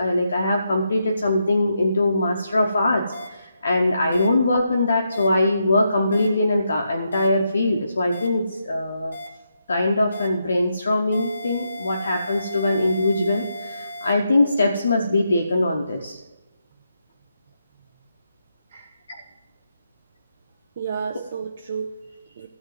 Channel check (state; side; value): inverted; both; correlation -0.82